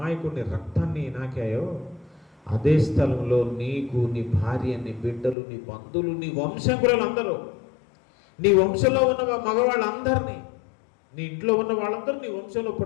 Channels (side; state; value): right; drops out; at 5.4 s